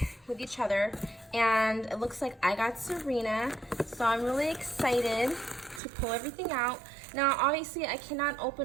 with each other, and it looks like I got Serena, so I'm really excited to pull everything out. Now obviously I cannot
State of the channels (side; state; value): left; drops out; at 5.8 s